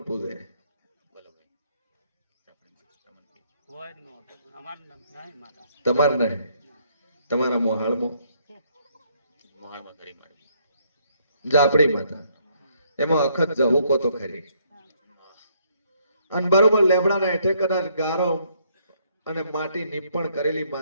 પૂજે તમાર નહીં તમારા મોહાળમાં જાપડી માતા એમાં અખત જહુકો તો ખરી અને બરોબર લેબડાના હેઠે કદાચ ગારો અને માટી નીપણ કરેલી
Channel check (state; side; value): inverted; both; correlation -0.69